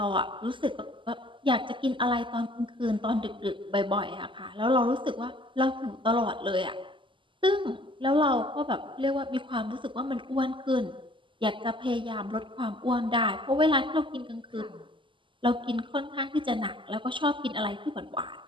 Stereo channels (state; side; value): late; left; 0.25 ms